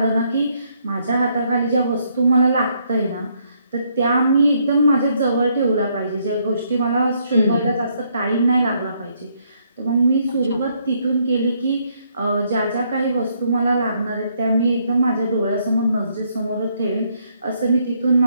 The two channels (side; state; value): both; inverted; correlation -0.72